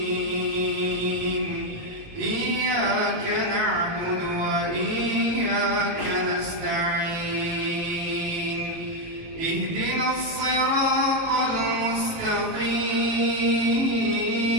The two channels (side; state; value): left; late; 18 ms